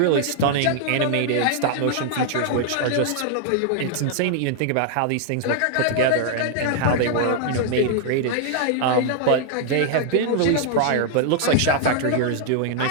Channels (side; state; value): both; different; correlation 0.00